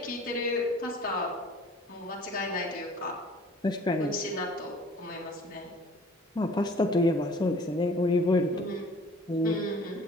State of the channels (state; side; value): normal; both; correlation 0.50